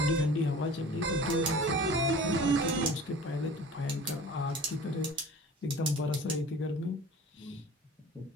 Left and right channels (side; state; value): both; normal; correlation 0.42